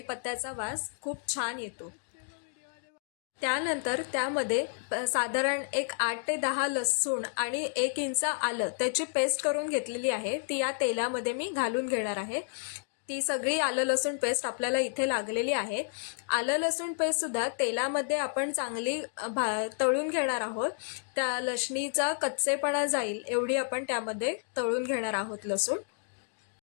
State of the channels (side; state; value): right; silent; digital silence